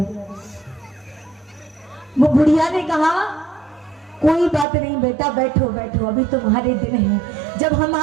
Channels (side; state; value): left; drops out; at 4.7 s